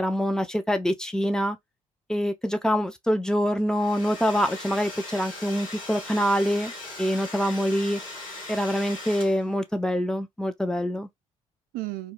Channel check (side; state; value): both; normal; correlation 0.90